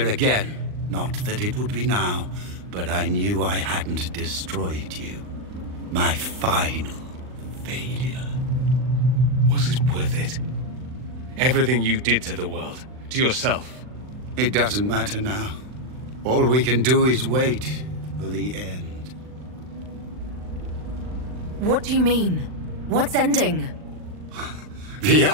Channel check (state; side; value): late; left; 39 ms